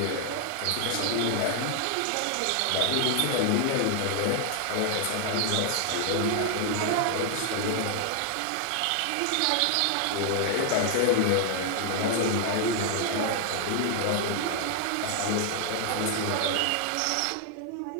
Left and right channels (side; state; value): both; different; correlation 0.00